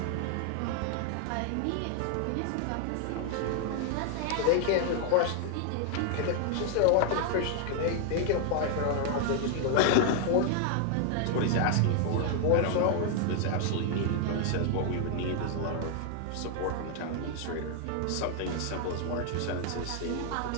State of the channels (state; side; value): different; both; correlation 0.00